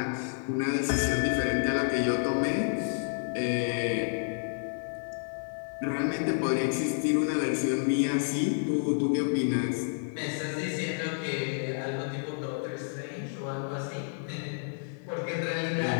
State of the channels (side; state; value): right; silent; digital silence